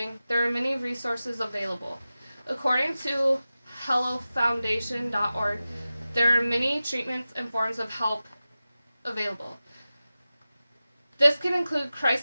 there are many resources available. According to HelloFoundation.org, there are many treatments and forms of help available. This can include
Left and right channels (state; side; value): inverted; both; correlation -0.95